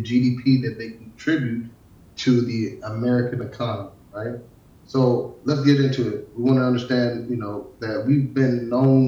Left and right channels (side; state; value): both; identical; correlation 1.00